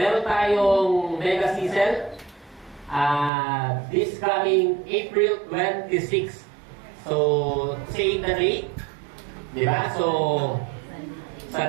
tayong mega season this coming April 26. So, say the date. Diba? So, sa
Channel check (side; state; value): left; drops out; at 3.3 s